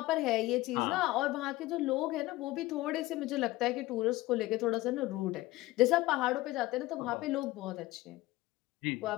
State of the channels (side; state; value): right; quieter; 18.5 dB